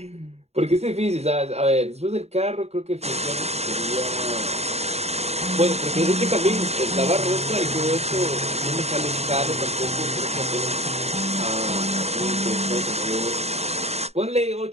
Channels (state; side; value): late; left; 0.31 ms